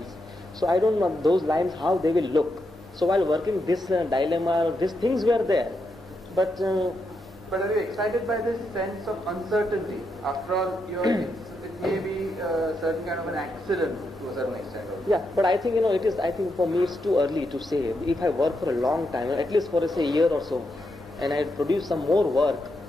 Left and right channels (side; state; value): both; normal; correlation 0.83